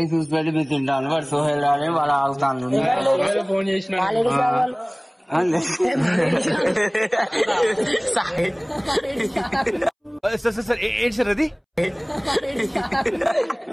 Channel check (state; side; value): identical; both; correlation 1.00